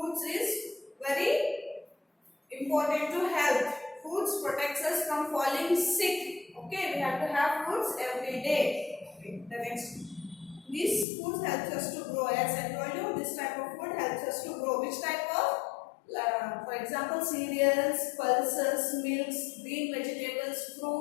is very important to health. Fruits protects us from falling sick. Okay, we have to have fruits every day. Okay, the next. These foods helps us to grow. As I told you, this type of food helps us to grow. Which type of? For example, cereals, pulses, milks, green vegetables,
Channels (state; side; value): drops out; right; at 11.1 s